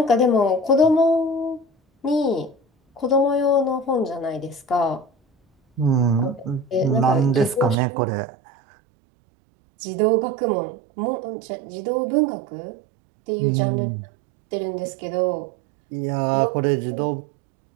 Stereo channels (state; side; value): drops out; left; at 7.8 s